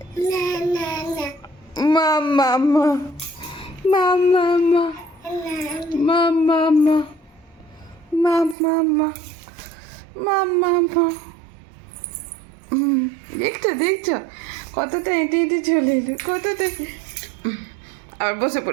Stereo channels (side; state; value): left; drops out; at 8.6 s